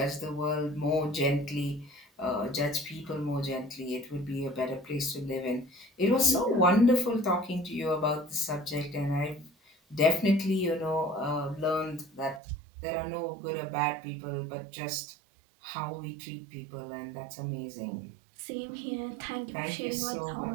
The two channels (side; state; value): left; drops out; at 12.4 s